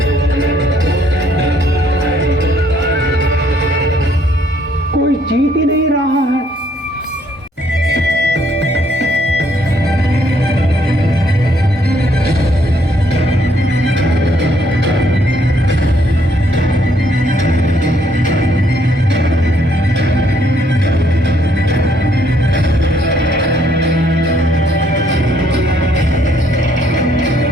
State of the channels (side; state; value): both; normal; correlation 0.68